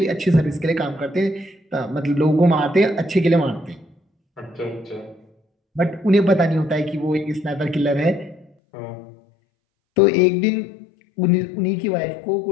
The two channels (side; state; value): right; drops out; at 8.5 s